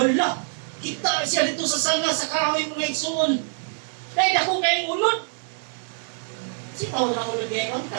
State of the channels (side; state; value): left; silent; 61 dB below the other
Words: Kita siya dito sa sanga sa kahoy mga igsoon. Dahil ako kayong ulod. Sitaw na ulod ngayon,